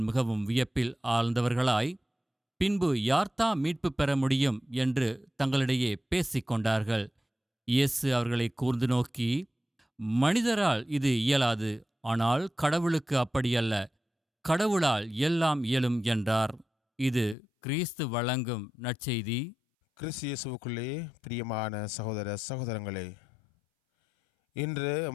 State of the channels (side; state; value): right; drops out; at 17.4 s